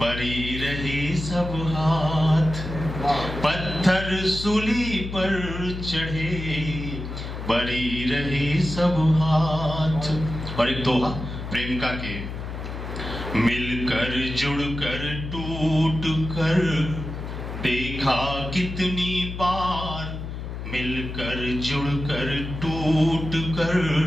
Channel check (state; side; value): noise; left; hum, 7 dB below the sound